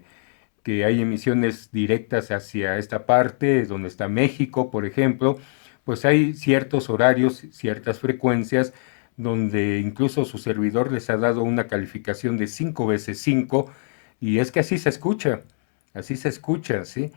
hay emisiones directas hacia esta parte, donde está México, por ejemplo, pues hay ciertos horarios, ciertas frecuencias donde incluso su servidor les ha dado una calificación de 5 veces 5, y es que así se escucha, ¿sí?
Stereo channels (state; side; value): silent; right; 64 dB below the other